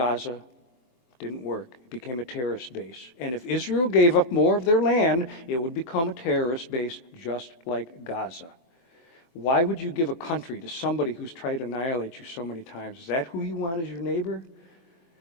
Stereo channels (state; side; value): late; right; 23 ms